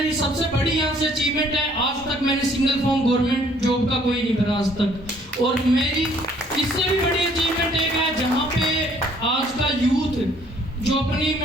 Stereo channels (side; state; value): both; normal; correlation 0.61